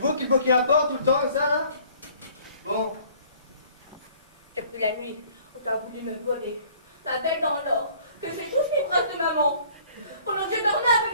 qui bloquez la porte tout le temps, ça, là? Bon. Depuis la nuit où tu as voulu me voler ma bête en or, que j'ai touché les bras de maman, pendant que j'ai dormi avec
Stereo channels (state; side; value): inverted; both; correlation -0.55